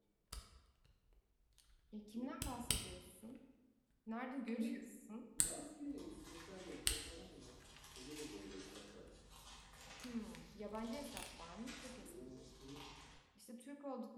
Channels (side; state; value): both; identical; correlation 1.00